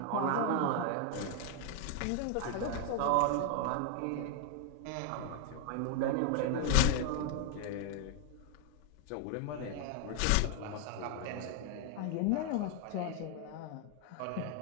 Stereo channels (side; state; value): both; different; correlation 0.00